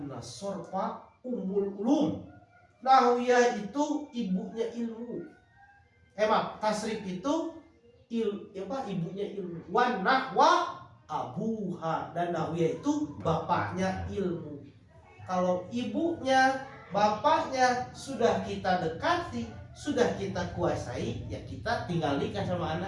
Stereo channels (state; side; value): identical; both; correlation 1.00